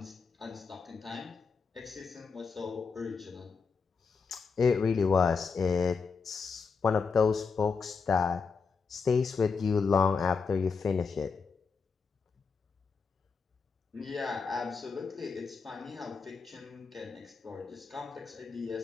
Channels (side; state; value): right; quieter; 5.1 dB